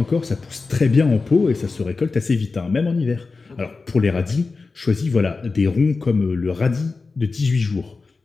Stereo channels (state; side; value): quieter; right; 4.1 dB